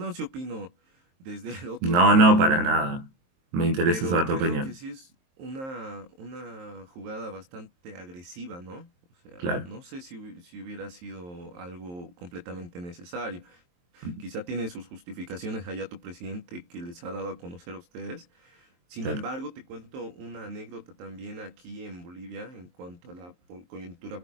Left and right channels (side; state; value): left; late; 23 ms